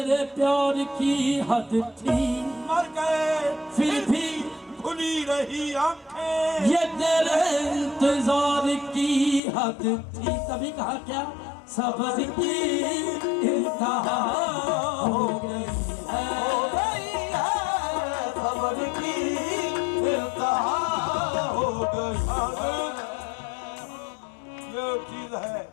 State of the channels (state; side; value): drops out; right; at 9.4 s